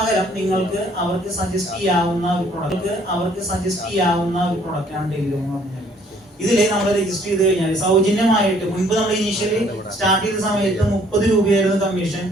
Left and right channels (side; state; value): both; normal; correlation 0.61